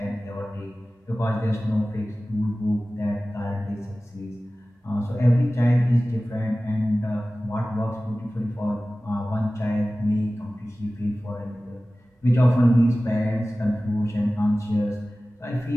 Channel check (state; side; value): normal; both; correlation 0.97